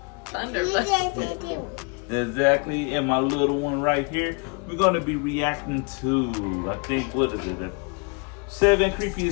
Thunder Buddy. Exactly, and my little one right here. We're gonna be reacting to, I think, what is it? 7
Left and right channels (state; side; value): quieter; right; 33.4 dB